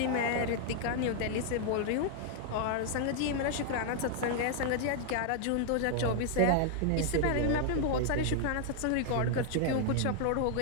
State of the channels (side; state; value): both; different; correlation 0.00